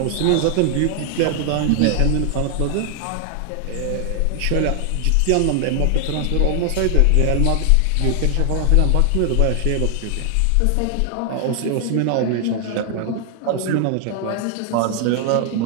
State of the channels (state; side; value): different; both; correlation 0.00